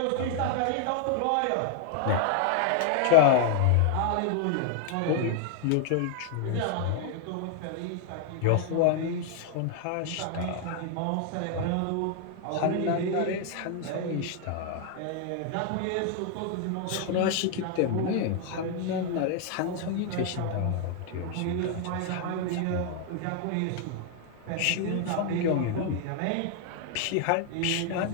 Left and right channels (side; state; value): both; different; correlation 0.00